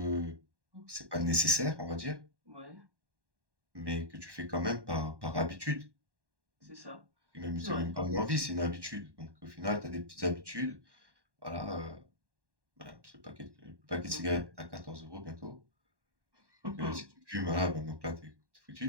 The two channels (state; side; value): late; left; 1.1 ms